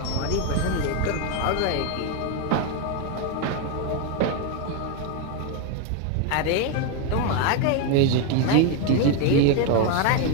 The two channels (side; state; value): both; different; correlation 0.01